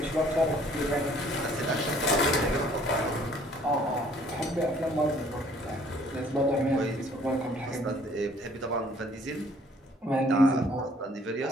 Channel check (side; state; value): both; normal; correlation 0.58